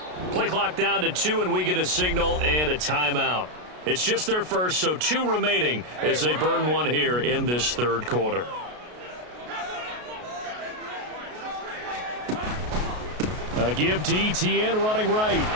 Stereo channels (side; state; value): left; late; 33 ms